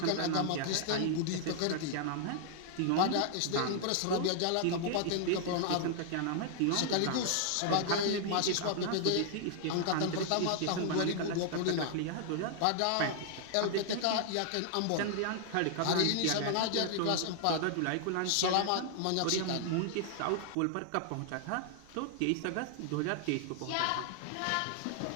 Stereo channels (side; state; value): both; different; correlation 0.00